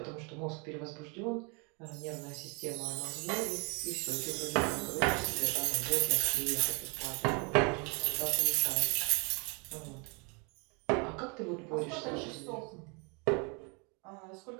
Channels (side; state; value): left; quieter; 32.9 dB